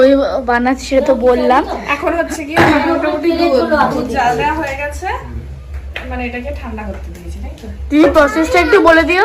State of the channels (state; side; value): identical; both; correlation 1.00